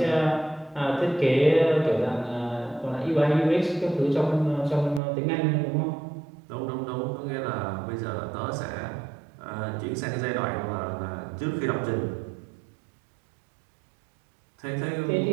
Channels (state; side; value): drops out; left; at 5.0 s